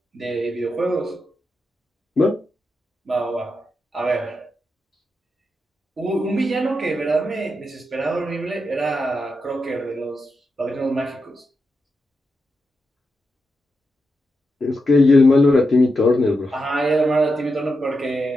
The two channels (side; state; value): both; normal; correlation 0.87